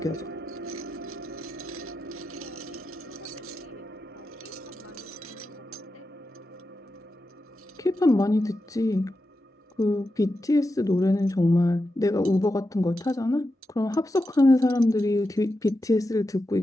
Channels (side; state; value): both; normal; correlation 0.89